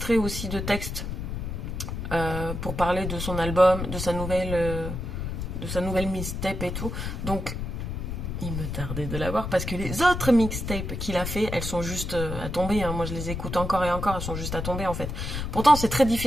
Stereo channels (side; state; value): left; noise; rumble, 5 dB below the sound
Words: aussi de textes pour parler de son album, de sa nouvelle mixtape et tout. Donc, il me tardait de l'avoir parce que les autres mixtapes qu'il a fait, elles sont juste à tomber. Hein. Moi, je les écoute encore et encore, elles sont juste à tomber en fait. Pourtant, c'est très